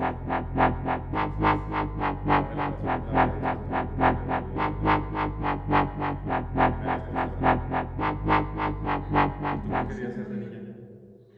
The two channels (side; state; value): both; identical; correlation 1.00